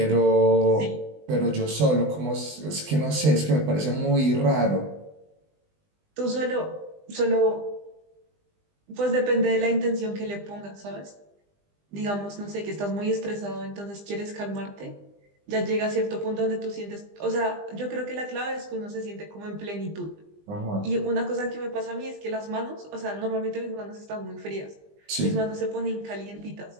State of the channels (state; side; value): late; left; 20 ms